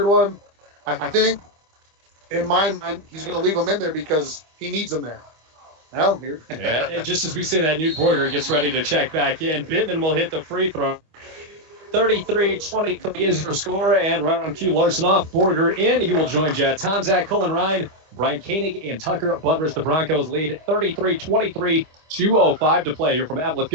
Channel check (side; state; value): left; late; 25 ms